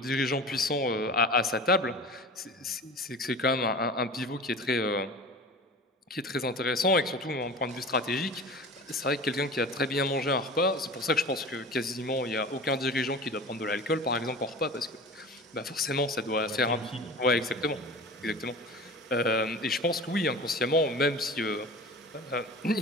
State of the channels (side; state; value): both; normal; correlation 0.36